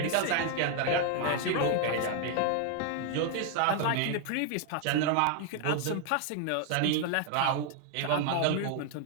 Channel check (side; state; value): both; different; correlation 0.00